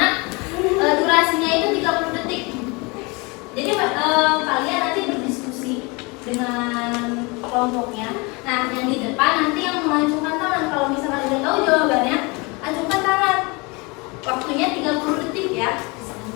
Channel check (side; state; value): right; quieter; 27.6 dB